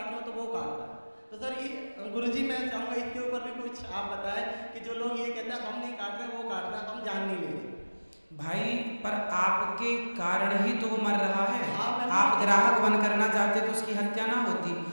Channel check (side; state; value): both; inverted; correlation -1.00